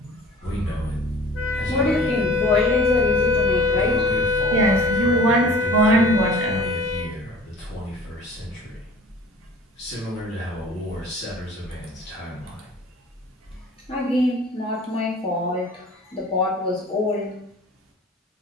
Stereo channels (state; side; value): normal; both; correlation 0.45